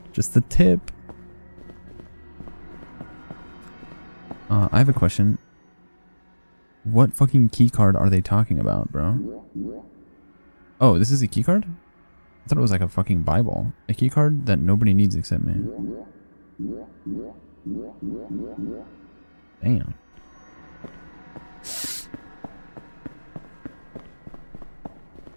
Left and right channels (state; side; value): inverted; both; correlation -1.00